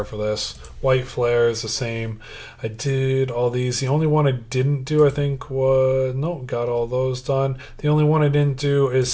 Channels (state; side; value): identical; both; correlation 1.00